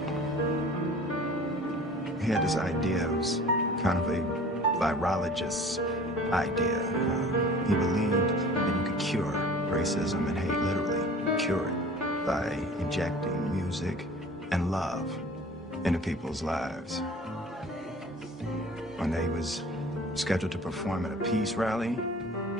He had this idea. It was kind of a virologist's idea. He believed that you could cure racism and hate, literally cure it, by injecting music and love into people's lives. When they was scheduled to perform at a peace rally,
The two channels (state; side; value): normal; both; correlation 0.44